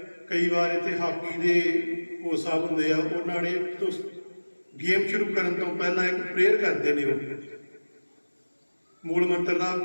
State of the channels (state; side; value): inverted; both; correlation -1.00